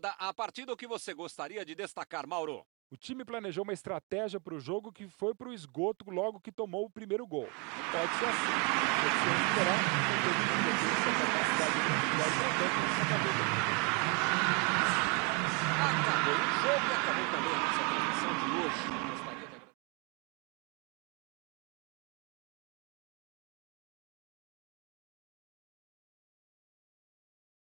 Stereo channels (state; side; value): quieter; left; 30.5 dB